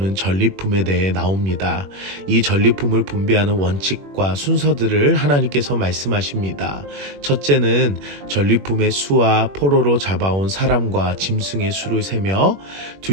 전리품에 대해 나옵니다. 이 전리품을 분배하는 원칙과 순서들을 하나님께서 말씀하십니다. 첫째는 전리품의 수와 포로로 잡아온 사람과 짐승의 수를 세며,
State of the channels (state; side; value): late; left; 21 ms